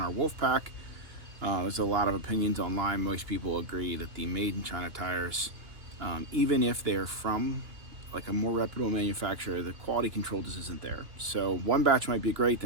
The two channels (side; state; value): left; late; 2.8 ms